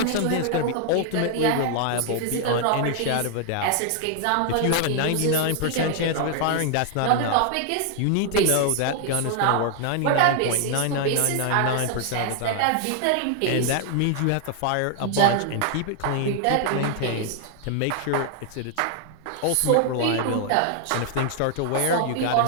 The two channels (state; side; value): different; both; correlation 0.00